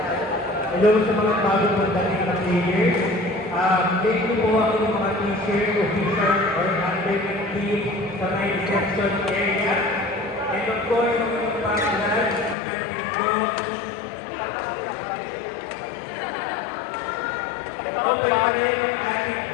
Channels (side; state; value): right; drops out; at 12.6 s